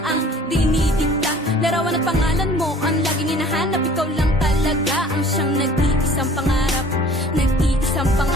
ang dinidikta. Larawan at pangalan mo ang laging hinahanap, ikaw lang talaga ang siyang nag-iisang pangarap. Nag-iisang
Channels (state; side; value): normal; both; correlation 0.49